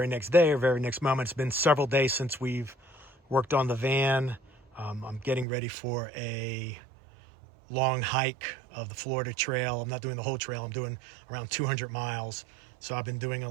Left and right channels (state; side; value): drops out; left; at 5.5 s